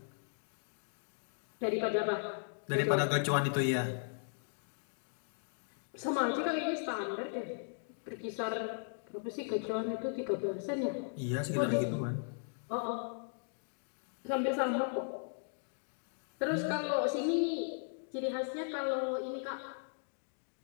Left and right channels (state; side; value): silent; right; digital silence